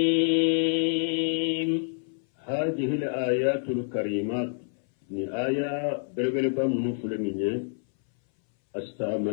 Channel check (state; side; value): silent; right; 60 dB below the other